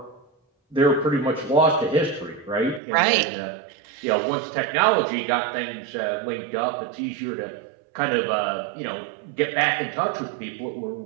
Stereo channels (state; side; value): drops out; left; at 2.8 s